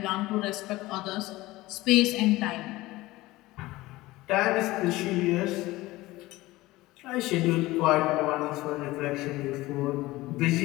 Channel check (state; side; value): quieter; right; 18.8 dB